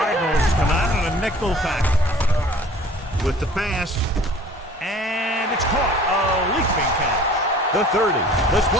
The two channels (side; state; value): both; normal; correlation 0.49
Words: come out in a nickel package with the pass. And it's caught. A leaping catch. The 30, the